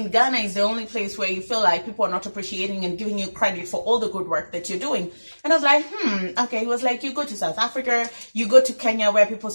Ghana is the only place where you feel like people are not appreciating and giving you credit for all the good work that you're doing. And I was like, okay. He was like, you go to South Africa, you go to Kenya where people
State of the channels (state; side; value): inverted; both; correlation -1.00